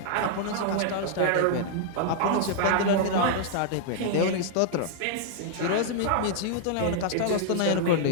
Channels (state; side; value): different; both; correlation -0.01